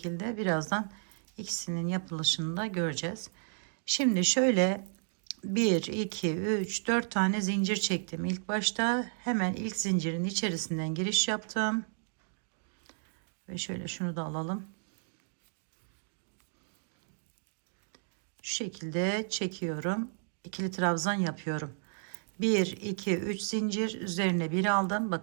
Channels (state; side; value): silent; left; digital silence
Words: birazdan ikisinin yapılışını da göreceğiz. Şimdi şöyle 1 2 3 4 tane zincir çektim. İlk başta hemen ilk zincirin içerisinden giriş yaptım. Ve şöyle şunu da alalım. Şu şekilde çekiyorum. İkili trabzan yapıyorum. 1 2 3 zincir üzerine bir aldım.